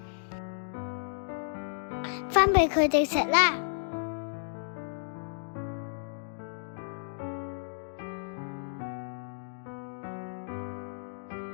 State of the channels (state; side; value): silent; right; digital silence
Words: 分俾佢哋食啦。